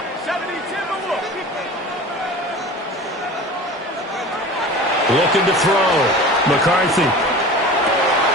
Looking to throw. McCarthy. And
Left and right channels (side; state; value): both; normal; correlation 0.36